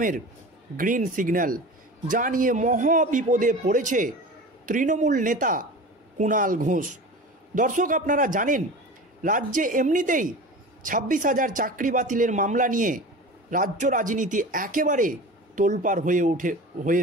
গ্রিন সিগন্যাল, যা নিয়ে মহা বিপদে পড়েছে তৃণমূল নেতা কুণাল ঘোষ। দর্শক, আপনারা জানেন রাজ্যে এমনিতেই 26,000 চাকরি বাতিলের মামলা নিয়ে রাজ্য রাজনীতি একেবারে তোলপাড় হয়ে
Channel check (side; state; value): both; normal; correlation 0.34